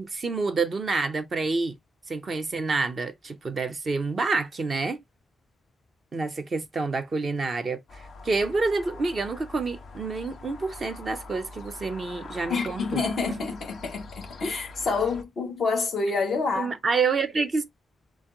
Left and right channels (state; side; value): normal; both; correlation 0.79